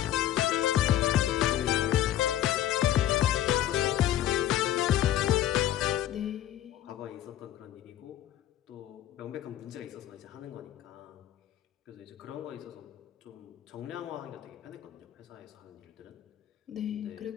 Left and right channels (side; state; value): right; quieter; 12.1 dB